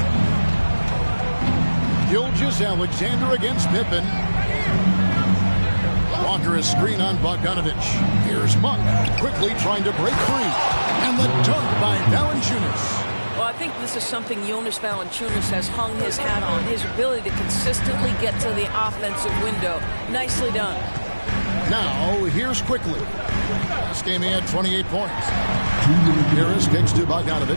Gilgeous-Alexander against Pippen. Walker is screen on Bogdanovich. Here's Monk quickly trying to break free. And the dunk by Valanciunas. Well, I think this is something Jonas Valanciunas has hung his hat on. His ability to consistently get to the offensive window. Nicely done. Now, here's quickly. Last game he had 28 points. Harris kicks to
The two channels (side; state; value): both; inverted; correlation -1.00